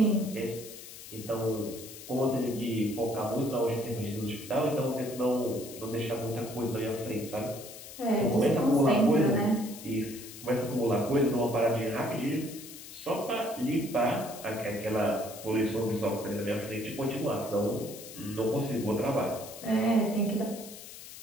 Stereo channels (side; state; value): left; noise; hiss, 14 dB below the sound